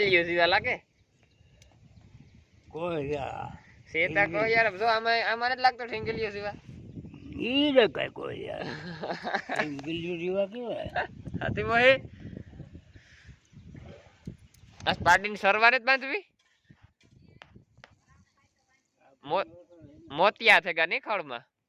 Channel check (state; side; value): identical; both; correlation 1.00